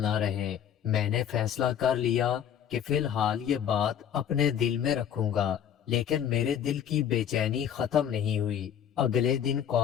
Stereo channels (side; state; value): right; quieter; 9.1 dB